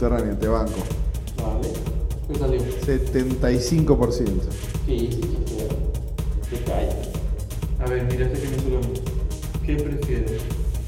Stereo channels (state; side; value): identical; both; correlation 1.00